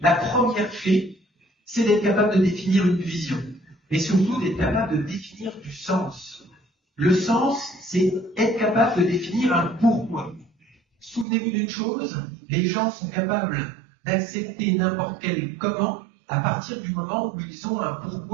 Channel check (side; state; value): left; drops out; at 11.2 s